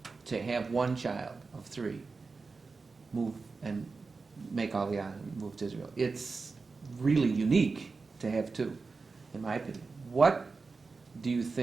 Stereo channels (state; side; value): quieter; left; 4.3 dB